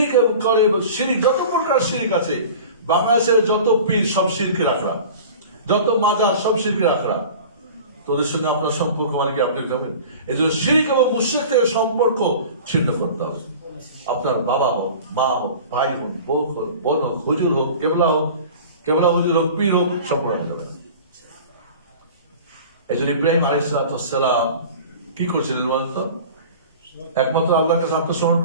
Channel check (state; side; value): inverted; both; correlation -0.39